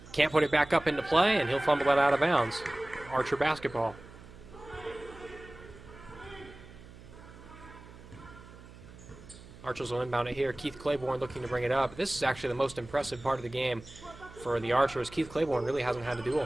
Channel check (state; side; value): noise; right; hum, 19 dB below the sound